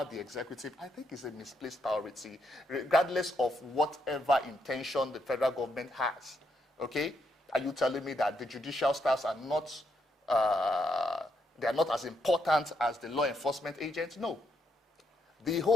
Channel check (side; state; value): both; normal; correlation 0.78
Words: the executive, I think it's a misplaced priority, regardless of whatever intention the federal government has. Okay? Are you telling me that the judicial staffs are not, they are not as important as the law enforcement agents? No. The